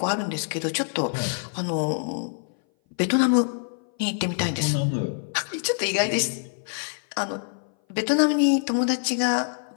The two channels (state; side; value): silent; right; 58 dB below the other